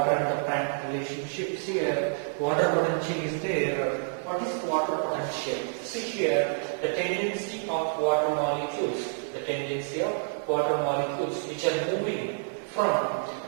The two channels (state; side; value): silent; left; 59 dB below the other